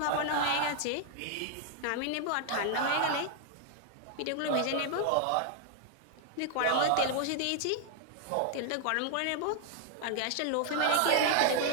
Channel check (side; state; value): both; different; correlation 0.00